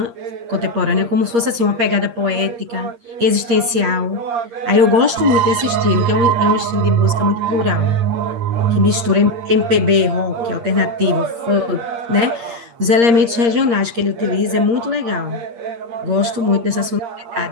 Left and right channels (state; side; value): late; left; 8.6 ms